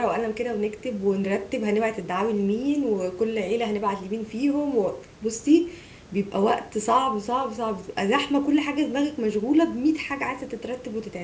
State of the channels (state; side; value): identical; both; correlation 1.00